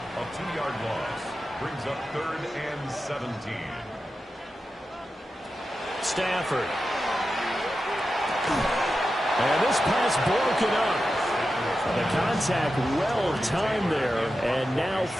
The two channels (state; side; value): normal; both; correlation 0.91